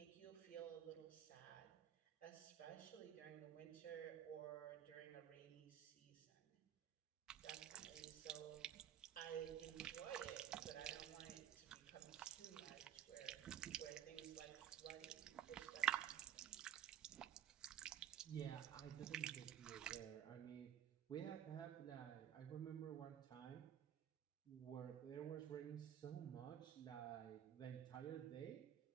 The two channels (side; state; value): left; quieter; 9.8 dB